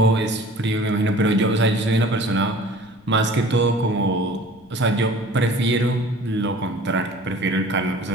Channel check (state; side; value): noise; left; rumble, 29 dB below the sound